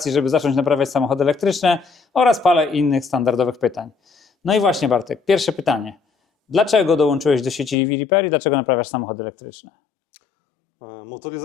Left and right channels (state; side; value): drops out; right; at 7.8 s